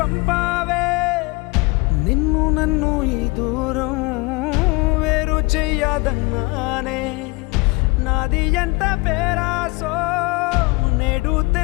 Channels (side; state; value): right; quieter; 25.3 dB